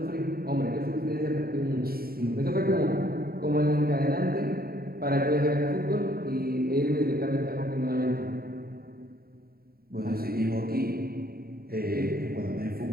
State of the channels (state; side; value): late; left; 0.44 ms